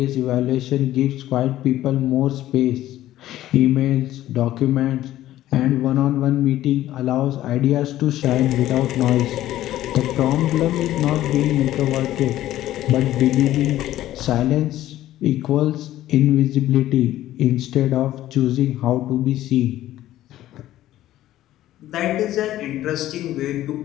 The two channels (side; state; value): right; quieter; 14.0 dB